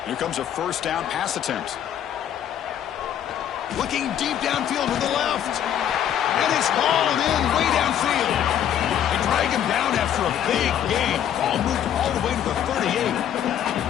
Here comes a 1st down pass attempt. Looking deep downfield with the left. And it's hauled in way downfield. They drag him down after a big gain. Ball moved all the way to the 38.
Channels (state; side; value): quieter; right; 10.1 dB